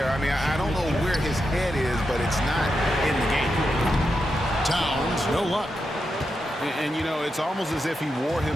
I mean, I don't know where his head is, but it's not in the game. Towns, no luck. And you know, it's almost as if he wore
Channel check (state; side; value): normal; both; correlation 0.87